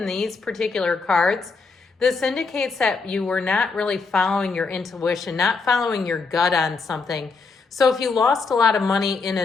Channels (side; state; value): right; quieter; 4.4 dB